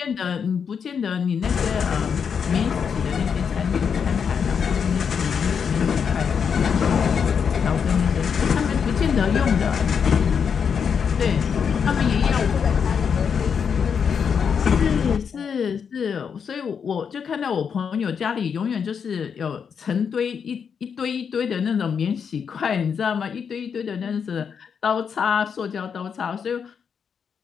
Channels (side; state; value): right; quieter; 6.8 dB